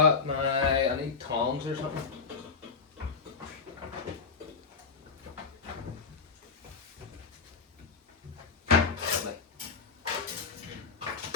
my, I need tongs or something. Lovely.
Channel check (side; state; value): right; quieter; 5.0 dB